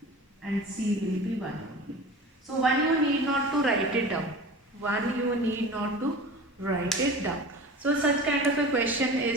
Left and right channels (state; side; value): normal; both; correlation 0.36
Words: and c will be 1 only. So 1 you need not to write it down. 1 you need not to write it down. So such kind of a question